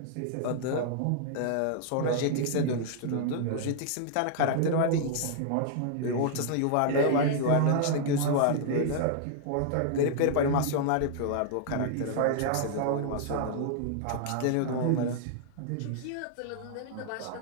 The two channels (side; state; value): both; different; correlation -0.01